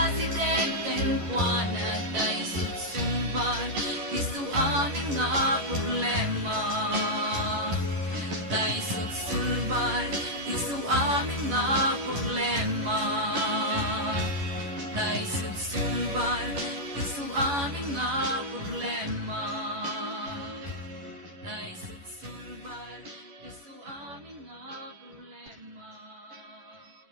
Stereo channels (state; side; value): late; left; 11 ms